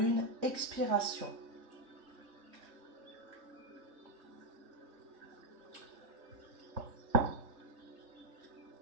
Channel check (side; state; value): left; late; 3.0 ms